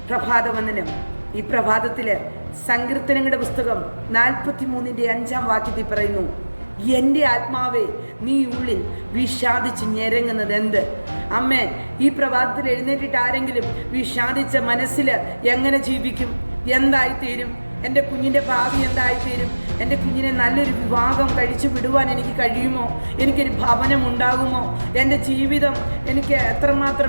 പ്രഭാതവന്ദനം. ഈ പ്രഭാതത്തില് സങ്കീർത്തനങ്ങളുടെ പുസ്തകം 43:5 പറയുന്നു, എൻ്റെ ആത്മാവേ നീ ഉള്ളിൽ വിഷാദിച്ച് ഞെരങ്ങുന്നത് എന്ത്? അമ്മേ, ഈ പ്രഭാതത്തിൽ എഴുന്നേറ്റിട്ട് ആരെങ്കിലും വിഷാദിച്ച മനസ്സിൽ എങ്ങനെ ജീവിക്കും? എന്തായിത്തീരും? എൻ്റെ കുഞ്ഞിൻ്റെ ഭാവി എന്തായിത്തീരും? എൻ്റെ കുഞ്ഞിനെ നല്ലൊരു വിവാഹം കഴിച്ചു വിടുവാൻ എനിക്ക് കഴിയുമോ? എനിക്കൊരു ഭവനം ഉണ്ടാകുമോ? എൻ്റെ ജീവിതം എനിക്ക്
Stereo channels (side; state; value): both; inverted; correlation -1.00